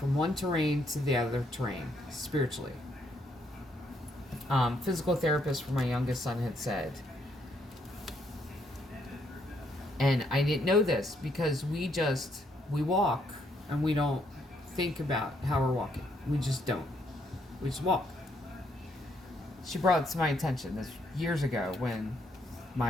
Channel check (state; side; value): normal; both; correlation 0.73